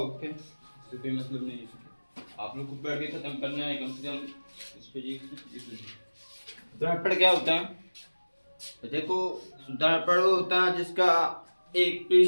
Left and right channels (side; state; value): both; inverted; correlation -1.00